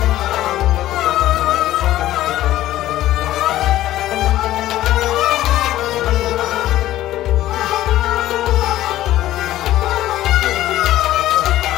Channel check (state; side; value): quieter; right; 14.3 dB